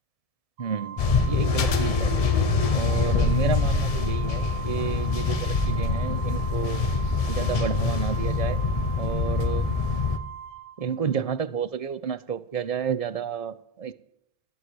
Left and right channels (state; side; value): late; right; 1.7 ms